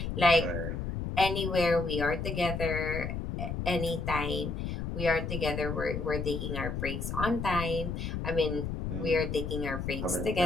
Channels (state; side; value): noise; left; rumble, 4 dB below the sound